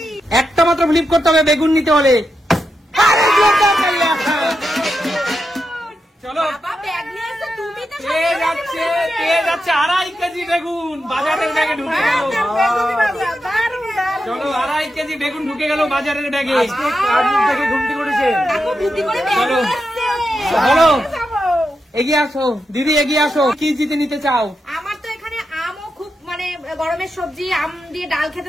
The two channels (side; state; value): both; normal; correlation 0.87